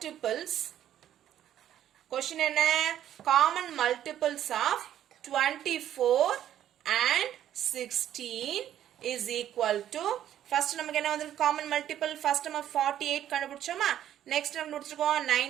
Question என்ன, common multiples of 24 and 16 is equal to, first நமக்கு என்ன வந்திருக்கு, காமன் மல்டிபிள் ஃபர்ஸ்ட் நம்ம 48 கண்டுபிடிச்சோமா, நெக்ஸ்ட் நம்ம முடிச்சிருக்கோம்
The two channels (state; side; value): quieter; left; 11.2 dB